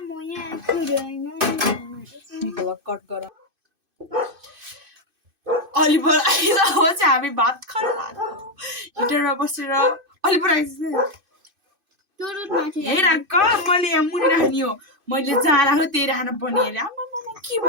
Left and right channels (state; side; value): late; left; 2.5 ms